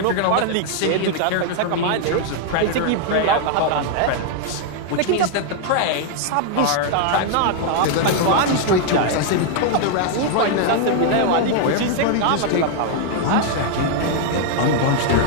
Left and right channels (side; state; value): both; different; correlation 0.00